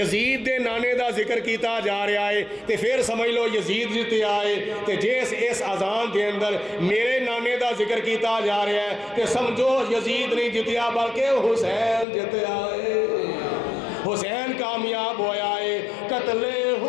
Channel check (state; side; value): drops out; right; at 12.1 s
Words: دے نانے دا ذکر کیتا جا رہا ہے تے پھر سمجھ لو یزید جتیا ہے. تے جس اس اذان دے اندر میرے نانے دا ذکر کیتا جا رہا ہے تے سمجھو یزید نہیں جتیا بلکہ حسین جتیا ہے. حسین کامیاب ہویا ہے. قتل